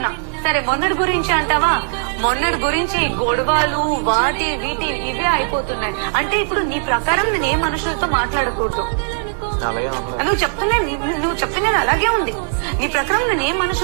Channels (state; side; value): silent; left; digital silence